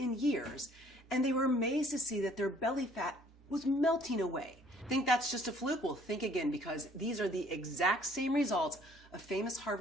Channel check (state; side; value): normal; both; correlation 0.58